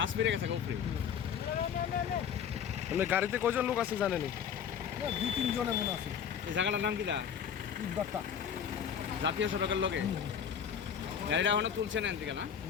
পেরে গেছে উপরে। মানে গাড়িতে কয়জন লোক আছে জানেনি? 2-3 জনে মনে আছে। এই জায়গাটার নাম কি দা? ইটবাট্টা। জাতীয় সড়কের লগে গাড়িটা এখনো তুলছে না এদিকে না?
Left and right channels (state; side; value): quieter; right; 8.1 dB